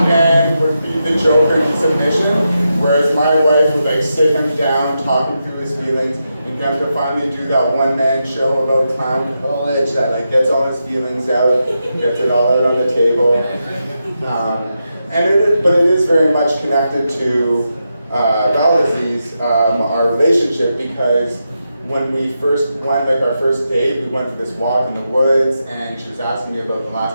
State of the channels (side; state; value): both; inverted; correlation -0.86